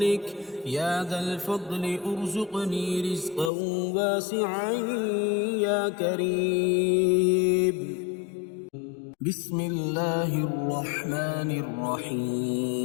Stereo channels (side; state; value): right; drops out; at 3.5 s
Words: يا ذا الفضل ارزقني رزقا واسعا يا كريم. بسم الله الرحمن